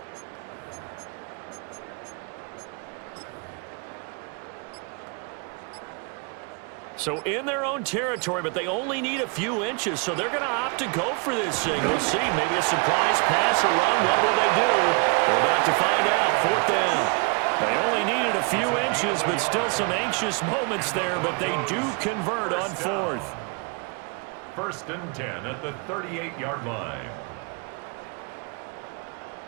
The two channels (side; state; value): left; quieter; 33.4 dB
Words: So in their own territory, but they only need a few inches, so they're going to opt to go for this thing. We'll see. Maybe a surprise pass or run. What will they do? We're about to find out. 4th down. They only needed a few inches, but still some anxious moments there, but they do convert on 4th. 1st and 10 at the 38-yard line.